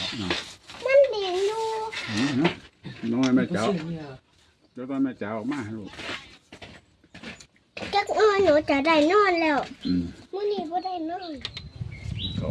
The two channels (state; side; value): identical; both; correlation 1.00